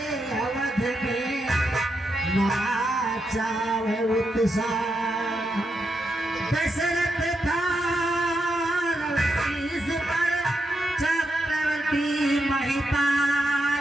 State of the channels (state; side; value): normal; both; correlation 0.84